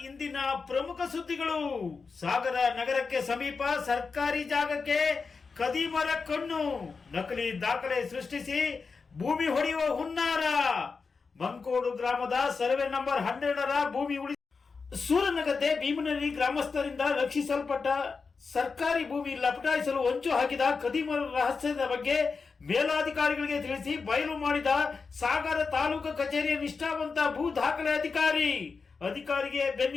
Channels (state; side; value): quieter; right; 4.8 dB